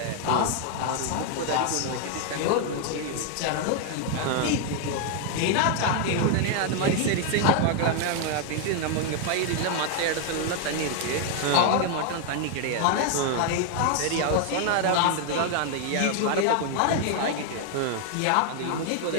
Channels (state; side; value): different; both; correlation 0.00